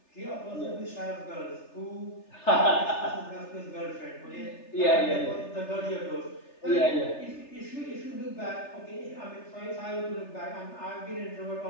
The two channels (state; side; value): late; right; 3.3 ms